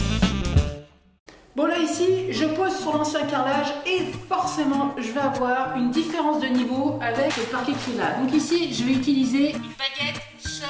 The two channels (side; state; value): both; identical; correlation 1.00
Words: Bon là ici, je pose sur l'ancien carrelage et forcément je vais avoir une différence de niveau avec le parquet qui est là. Donc ici, je vais utiliser une baguette